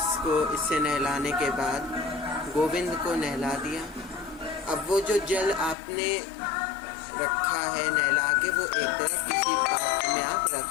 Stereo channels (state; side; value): drops out; right; at 5.8 s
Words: इससे नहलाने के बाद गोविंद को नहला दिया। अब वो जो जल आपने रखा है नहला के, वो एक तरफ किसी पात्र में आप